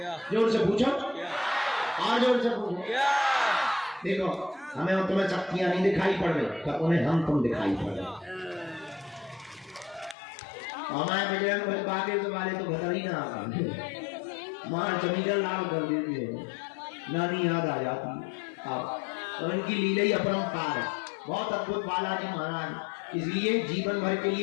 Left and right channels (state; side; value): drops out; right; at 10.2 s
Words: जोर से पूछो, और जोर से पूछो। देखो, हमें और तुम्हें शक्तियां नहीं दिखाई पड़ रही, तो उन्हें हम तुम दिखाई पड़ रहे। हमारे बजरंग बली बागेश्वर वाले तो बता ही ना आगा, मार जमीन लाल कर देती है, नानी याद आ जाती। तो इनकी लीला ही अपरंपार है, बहुत अद्भुत बालाजी महाराज। इसलिए जीवन भर के